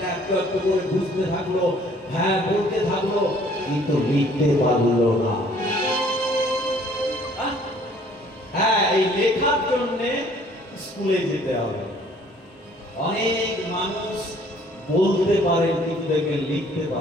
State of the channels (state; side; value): normal; both; correlation 0.58